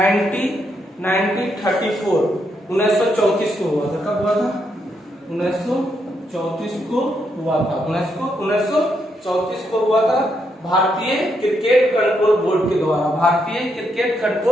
1934 को हुआ था। कब हुआ था? 1934 को हुआ था। 1934 1934 को हुआ था भारतीय क्रिकेट कंट्रोल बोर्ड के द्वारा। भारतीय क्रिकेट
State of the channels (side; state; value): both; normal; correlation 0.79